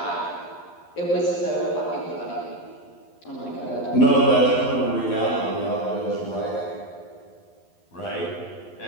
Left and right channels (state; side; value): late; right; 12 ms